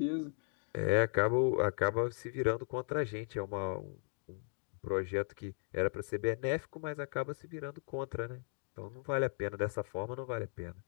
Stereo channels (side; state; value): right; silent; 53 dB below the other